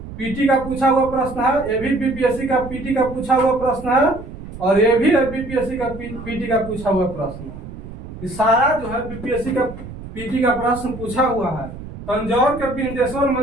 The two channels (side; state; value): right; noise; rumble, 12 dB below the sound